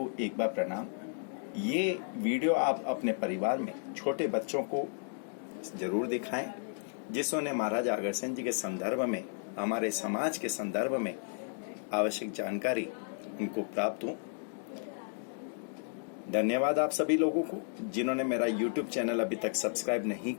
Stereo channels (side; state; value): right; silent; digital silence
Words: एक बार प्रणाम। ये वीडियो आप अपने परिवार में छोटे बच्चों को जरूर दिखाएं, जिसने महाराज अग्रसेन जी के संदर्भ में, हमारे समाज के संदर्भ में आवश्यक जानकारी उनको प्राप्त हो। धन्यवाद आप सभी लोगों को जिन्होंने मेरा YouTube चैनल अभी तक सब्सक्राइब नहीं